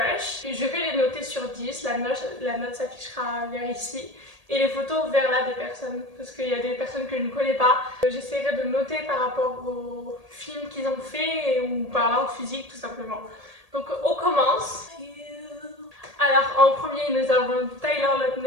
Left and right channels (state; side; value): late; left; 1.8 ms